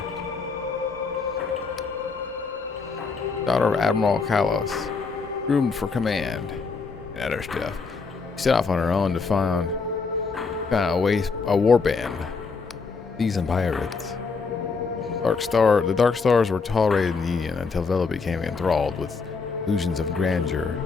Daughter of Admiral Kalos, groomed for command and other stuff. She set off on her own to find a war band, seasoned pirates. The Dark Stars were tolerated in the Union until Vela became enthralled with illusions of grandeur,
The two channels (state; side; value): quieter; right; 4.7 dB